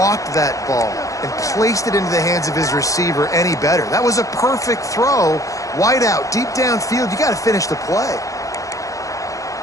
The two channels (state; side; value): late; right; 0.16 ms